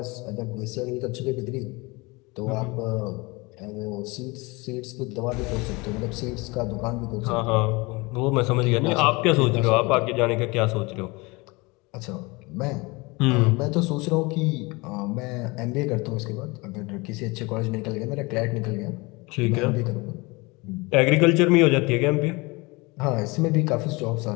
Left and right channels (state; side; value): quieter; right; 25.3 dB